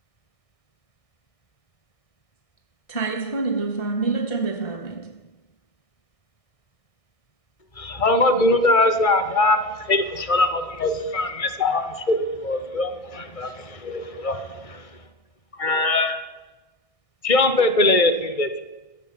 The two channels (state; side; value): late; right; 1.6 ms